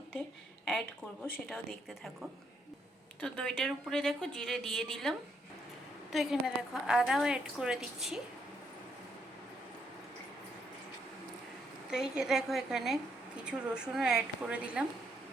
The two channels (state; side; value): normal; both; correlation 0.74